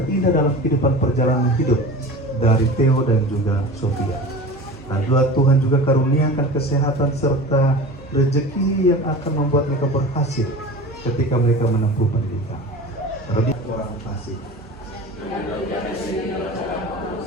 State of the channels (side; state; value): both; normal; correlation 0.35